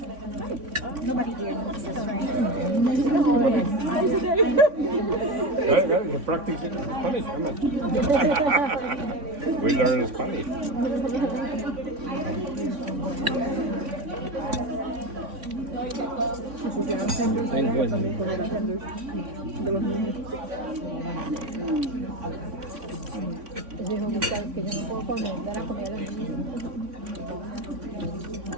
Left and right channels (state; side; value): late; left; 3.5 ms